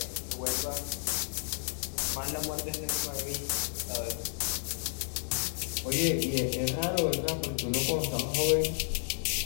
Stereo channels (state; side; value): silent; right; 57 dB below the other